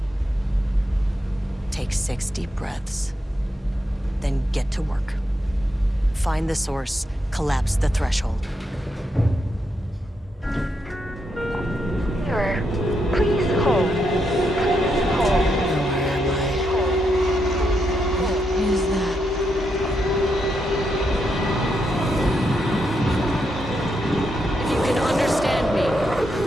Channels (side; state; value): both; normal; correlation 0.81